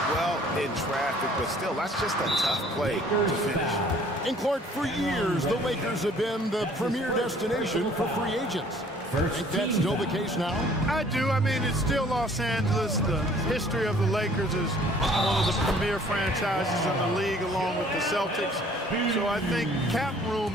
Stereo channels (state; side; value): normal; both; correlation 0.56